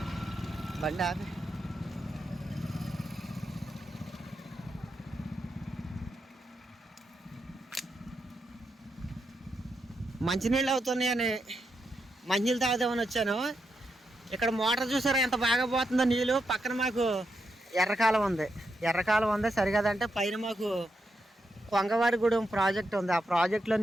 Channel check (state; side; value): normal; both; correlation 0.84